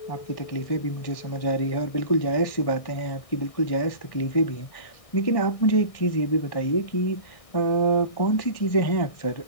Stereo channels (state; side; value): late; right; 1.6 ms